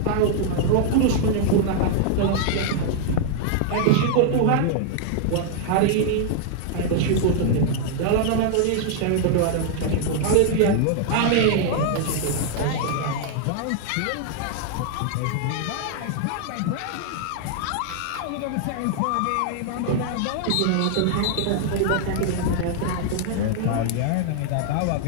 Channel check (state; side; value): different; both; correlation 0.00